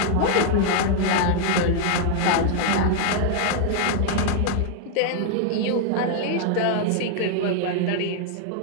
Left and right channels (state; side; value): different; both; correlation 0.00